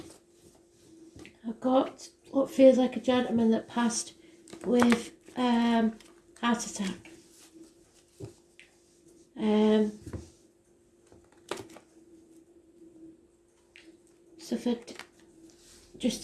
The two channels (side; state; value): both; identical; correlation 1.00